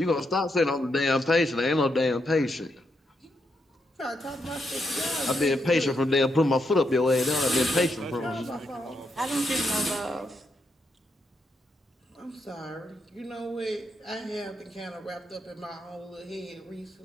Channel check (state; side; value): normal; both; correlation 0.81